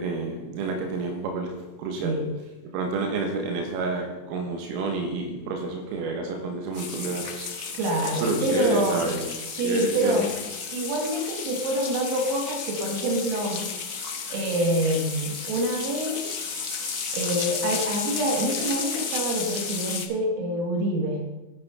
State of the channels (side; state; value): left; late; 29 ms